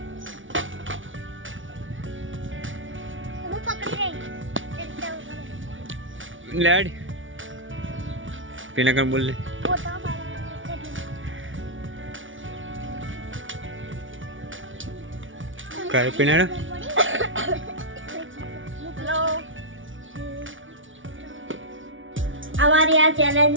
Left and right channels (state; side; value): late; left; 0.56 ms